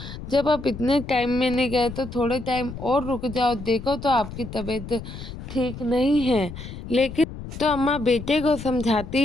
जब आप इतने टाइम में नहीं गए तो थोड़े टाइम और रुक जाओ, देखो तो आपकी तबीयत ठीक नहीं है। लेकिन तो अम्मा बेटे को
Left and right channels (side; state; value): left; noise; rumble, 11 dB below the sound